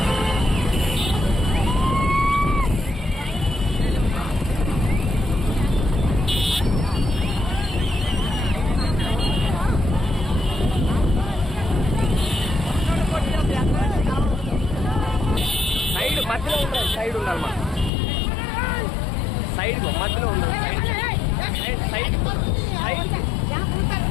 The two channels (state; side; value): drops out; right; at 17.9 s